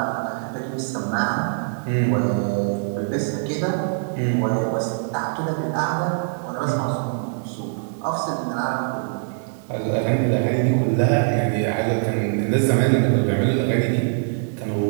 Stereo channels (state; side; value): silent; left; 64 dB below the other